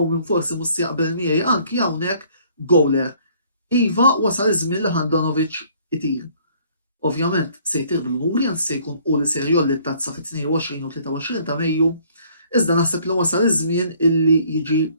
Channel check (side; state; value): both; inverted; correlation -0.60